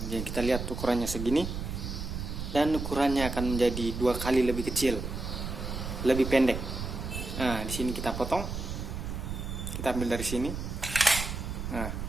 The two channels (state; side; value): noise; right; rumble, 5 dB below the sound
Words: Jadi kita lihat ukurannya segini, dan ukurannya akan menjadi 2 kali lebih kecil, lebih pendek. Nah, di sini kita potong, kita ambil dari sini. Nah,